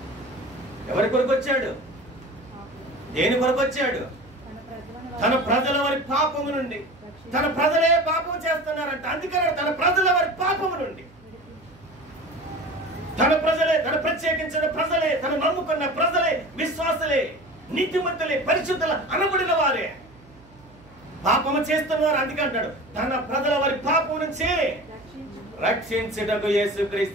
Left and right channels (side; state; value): right; noise; hum, 26 dB below the sound